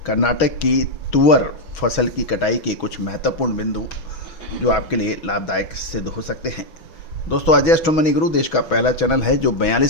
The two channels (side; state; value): right; late; 6.2 ms